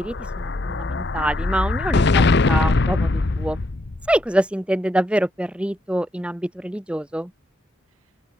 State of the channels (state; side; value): normal; both; correlation 0.76